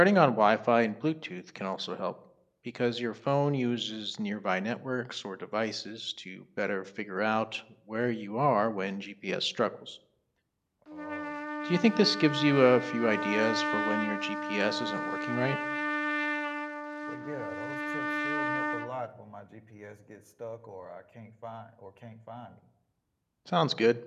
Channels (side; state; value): both; identical; correlation 1.00